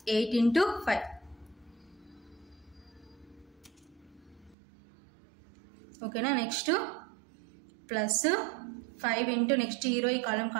ఇంటూ 5. ఓకేనా. నెక్స్ట్ ప్లస్ 5 ఇంటూ నెక్స్ట్ ఈ రో ఈ కాలం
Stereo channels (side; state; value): left; drops out; at 4.5 s